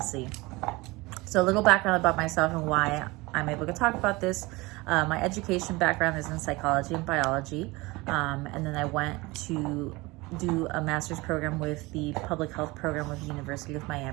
So a little background about myself and why I'm able to talk about this. My education background is in psychology and biology. And then I went to do a master's program with the public health program with the University of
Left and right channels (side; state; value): left; quieter; 22.8 dB